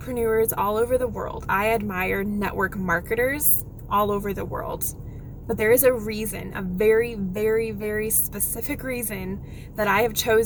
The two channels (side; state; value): both; identical; correlation 1.00